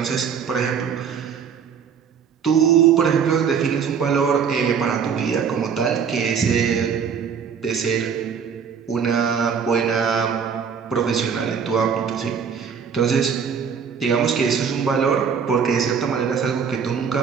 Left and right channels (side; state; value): left; quieter; 6.8 dB